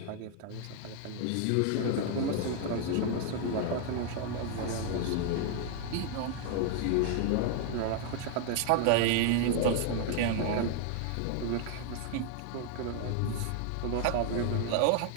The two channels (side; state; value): both; different; correlation 0.00